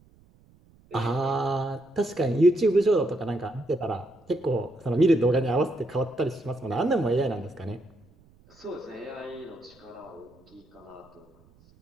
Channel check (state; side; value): noise; right; rumble, 29 dB below the sound